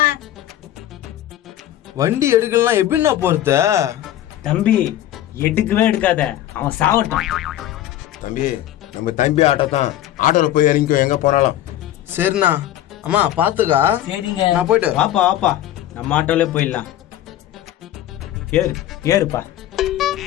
வண்டி எடுக்கலாம் எப்படின்னா போறது? தம்பி எடுக்கவே எடுக்காத, அவன் சாவட்டும். தம்பி நம்ம தம்பி ஆட்டோ தான், ஆட்டோல போய் இறங்கிக்கோ எங்க போனாலும். சரிண்ணா. அம்மா பாத்துக்கா. சரிங்க, நான் போயிட்டு வாப்பா வாப்பா, நம்ம ஆட்டோலே போயிடலாம். ஏறுப்பா.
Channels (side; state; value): right; quieter; 12.9 dB